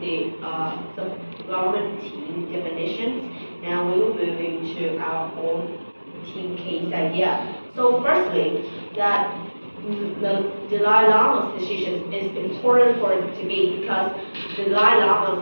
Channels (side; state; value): both; inverted; correlation -1.00